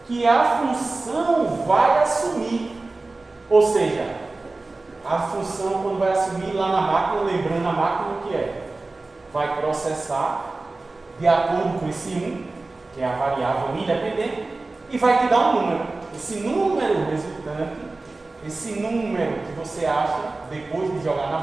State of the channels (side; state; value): left; quieter; 3.3 dB